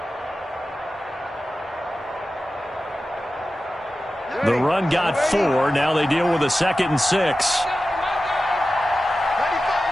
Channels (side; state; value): both; normal; correlation 0.94